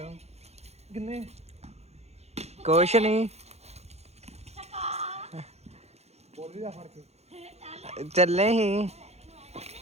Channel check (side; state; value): left; late; 0.31 ms